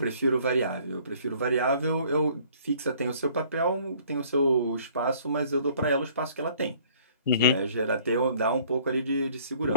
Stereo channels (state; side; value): inverted; both; correlation -0.57